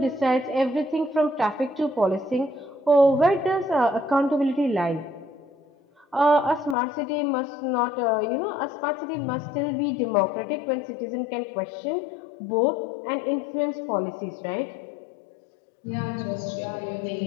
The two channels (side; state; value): right; drops out; at 6.8 s